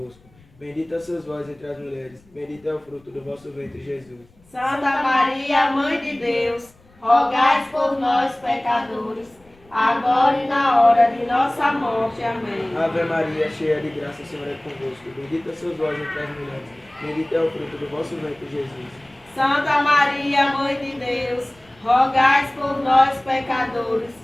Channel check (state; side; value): noise; left; rumble, 30 dB below the sound